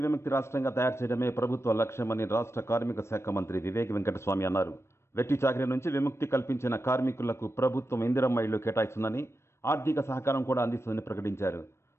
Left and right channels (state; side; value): late; right; 0.13 ms